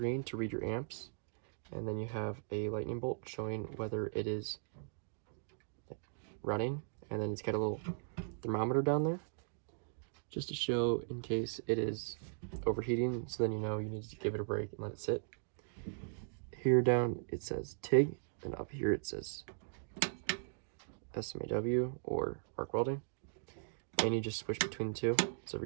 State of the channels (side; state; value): left; silent; digital silence